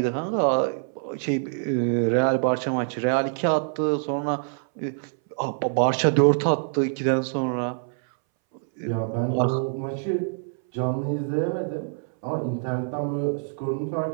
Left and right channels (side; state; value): left; silent; 61 dB below the other